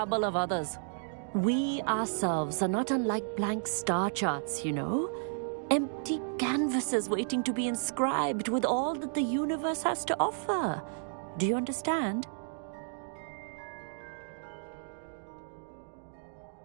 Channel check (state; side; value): silent; left; digital silence